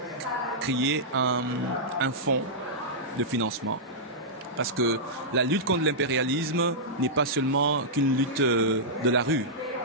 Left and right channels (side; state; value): both; normal; correlation -0.12